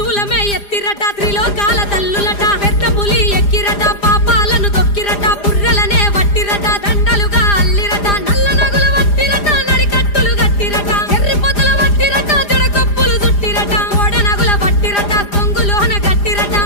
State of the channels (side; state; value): right; late; 4.9 ms